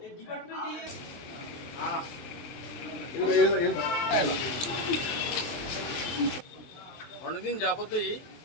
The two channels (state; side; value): late; right; 23 ms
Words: एक डिपार्टमेंट ही है। অনেকদিন যাবতই